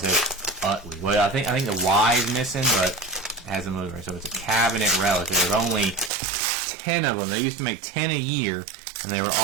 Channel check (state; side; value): drops out; left; at 6.1 s